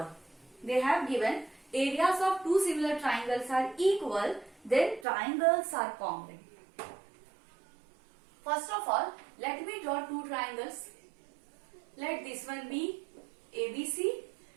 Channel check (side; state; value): left; drops out; at 5.1 s